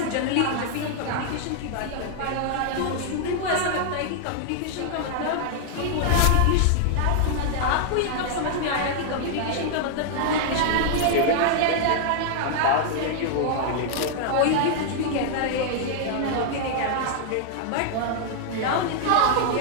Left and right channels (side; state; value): both; different; correlation 0.00